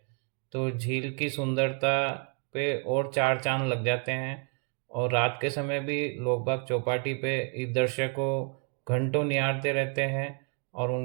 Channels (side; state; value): left; quieter; 38.9 dB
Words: तो झील की सुंदरता पे और चार चांद लग जाते हैं। और रात के समय भी लोग बाग चौपाटी पे इस दृश्य को घंटों निहारते रहते हैं, और